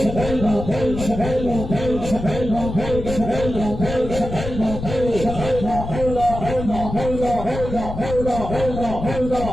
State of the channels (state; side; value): noise; left; rumble, 7 dB below the sound